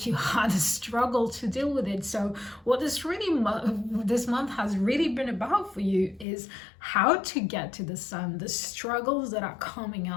you had a struggle to deal with it. So what this month has really been about for you is how to get to the Sun, the struggles that are coming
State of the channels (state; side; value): drops out; right; at 6.2 s